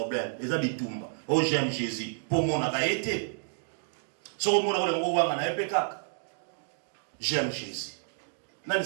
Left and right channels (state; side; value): silent; left; digital silence